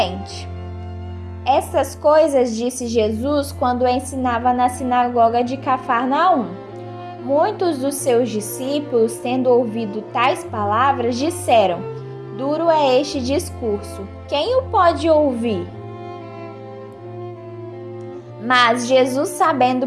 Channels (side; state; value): both; identical; correlation 1.00